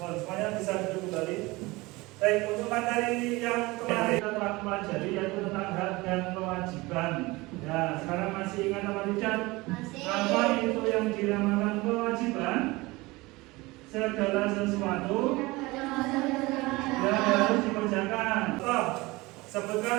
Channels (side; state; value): left; quieter; 22.1 dB